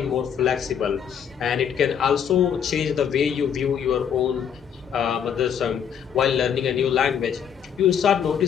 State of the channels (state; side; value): quieter; right; 8.0 dB